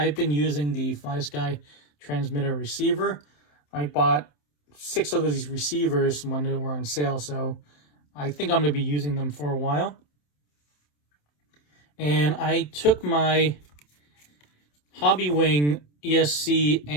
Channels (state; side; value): late; right; 27 ms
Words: been using the FlySky transmitter receiver. I bought 6 of these receivers when they were on sale, so I think I'm going to be using them for a while. And I took my Hobbywing ESC